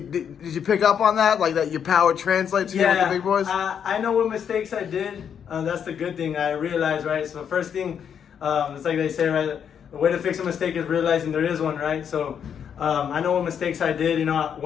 did you pick up on that? Like that your power translates here with the big boys? I know what mistakes I did. That's the good thing. I realized, right? So the first thing, it's like they say, right? The way to fix a mistake is realizing there is one, right? So I know what mistakes I did. You know,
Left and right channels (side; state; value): right; quieter; 8.0 dB